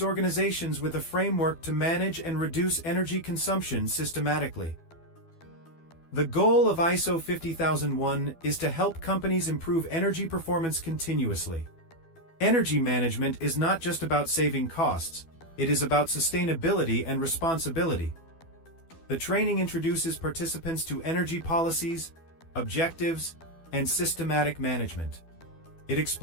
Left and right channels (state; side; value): late; right; 12 ms